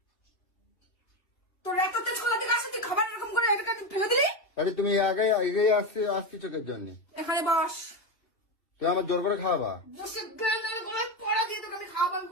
তোর এত তেজ কলা থেকে আসে তুই খাবার এরকম করে এটা ফেলে দিলি। তাহলে তুমি আগে এগিয়ে আসছি চোখের জন্য। এখানে বস। তুই আমার জোর করে খাওয়াবা। বসে গেলে গলায় পড়া দিয়ে তোকে আমি খাওয়াবো আমি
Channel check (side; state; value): right; late; 2.7 ms